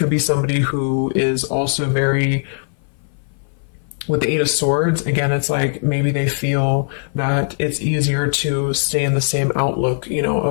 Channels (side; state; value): right; silent; 57 dB below the other